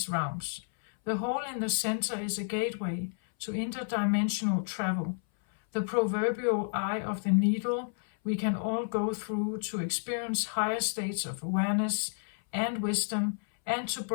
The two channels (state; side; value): silent; right; 57 dB below the other